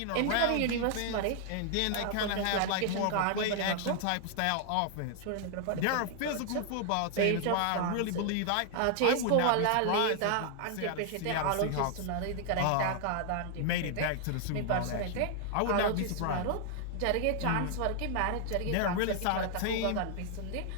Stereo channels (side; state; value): both; different; correlation 0.00